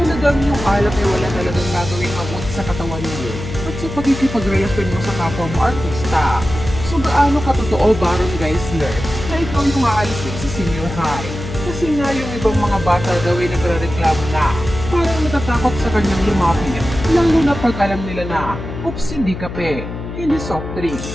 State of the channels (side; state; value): left; noise; hum, 8 dB below the sound